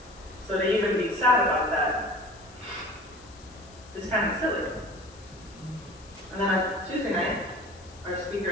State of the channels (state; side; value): noise; left; hiss, 23 dB below the sound